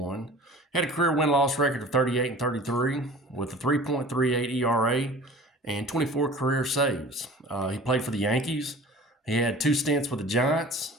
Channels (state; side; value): normal; both; correlation 0.42